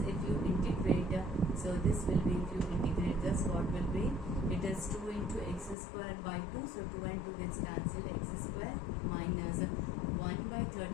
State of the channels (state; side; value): drops out; right; at 5.8 s